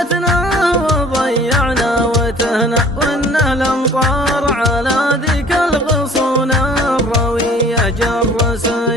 وضيعنا وتهنا، وان الامطار على ذيك الغصون الرويه جر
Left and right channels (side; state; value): both; normal; correlation 0.51